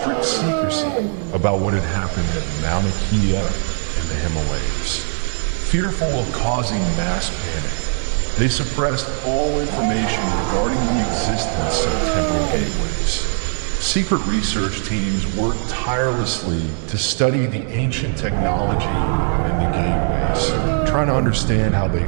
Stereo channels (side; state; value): left; silent; 55 dB below the other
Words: secrecy about what had happened at Mauna Kea in the Himalayas. Fearful of causing mass panic, they suppressed all information regarding the existence of temporal gateways. Secret research teams worked tirelessly to study the ancient technology in the gateways, trying to understand how they